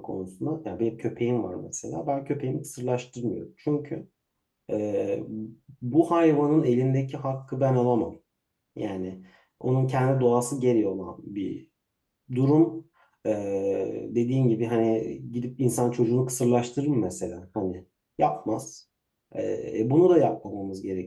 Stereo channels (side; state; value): both; identical; correlation 1.00